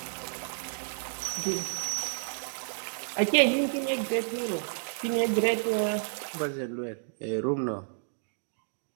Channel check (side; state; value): left; silent; digital silence